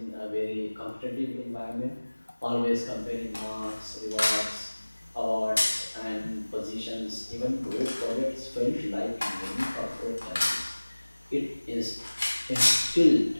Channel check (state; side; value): inverted; both; correlation -1.00